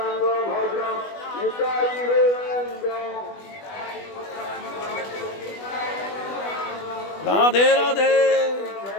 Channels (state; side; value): late; right; 20 ms